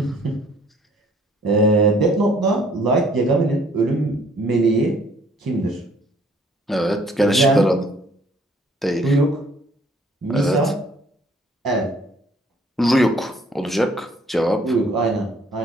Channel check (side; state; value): both; normal; correlation 0.60